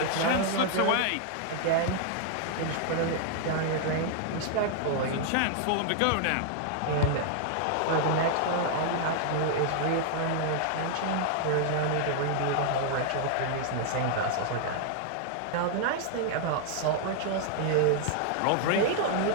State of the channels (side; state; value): both; different; correlation -0.01